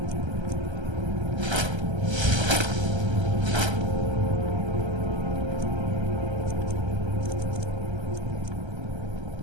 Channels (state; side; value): late; left; 1.3 ms